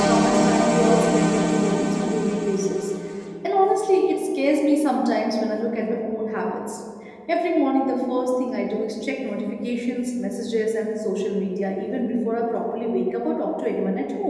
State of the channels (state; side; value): identical; both; correlation 1.00